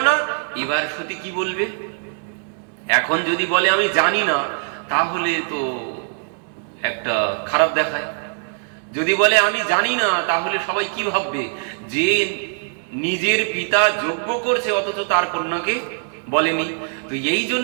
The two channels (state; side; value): silent; left; digital silence